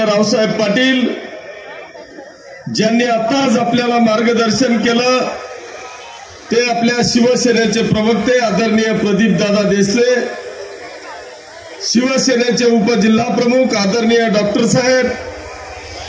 रावसाहेब पाटील, ज्यांनी आताच आपल्याला मार्गदर्शन केलं ते आपल्या शिवसेनेचे प्रवक्ते आदरणीय प्रदीपदादा देसले, शिवसेनेचे उपजिल्हा प्रमुख आदरणीय डॉक्टर साहेब,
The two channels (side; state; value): both; identical; correlation 1.00